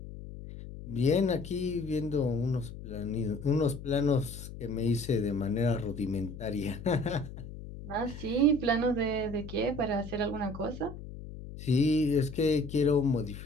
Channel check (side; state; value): left; noise; hum, 12 dB below the sound